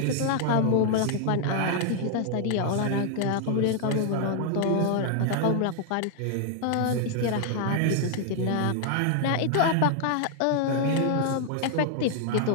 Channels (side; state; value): both; different; correlation 0.00